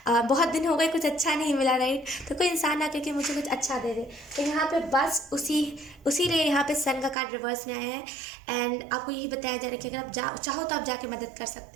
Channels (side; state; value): left; drops out; at 7.2 s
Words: बहुत दिन हो गए, कुछ अच्छा नहीं मिला, राइट। तो कोई इंसान आके कि मुझे कुछ अच्छा दे दे। तो यहाँ पे बस उसी लिए यहाँ पे सन का कार्ड रिवर्स में आया है। एंड आपको यही बताया जा रहा है कि अगर आप चाहो तो आप जाके मदद कर